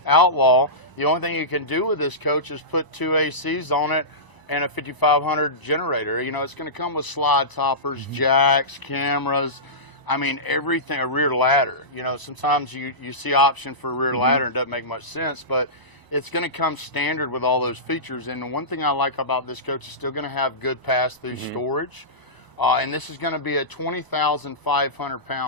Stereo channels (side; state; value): right; late; 1.0 ms